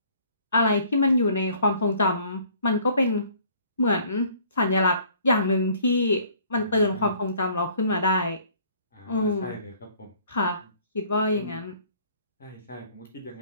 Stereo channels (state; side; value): inverted; both; correlation -0.57